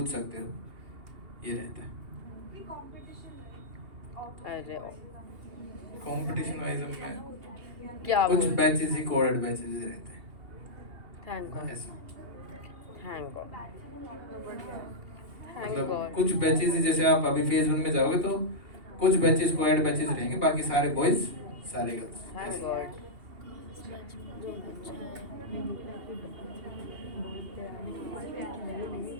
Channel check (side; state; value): left; late; 2.8 ms